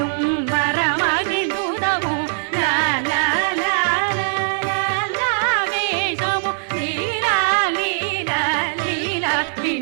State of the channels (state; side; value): silent; left; 58 dB below the other